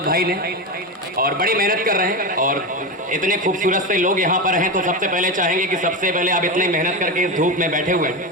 भाई ने, और बड़ी मेहनत कर रहे हैं। और इतने खूबसूरत से लोग यहाँ पर हैं, तो सबसे पहले चाहेंगे कि सबसे पहले आप इतनी मेहनत करके इस धूप में बैठे हुए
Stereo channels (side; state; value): both; normal; correlation 0.17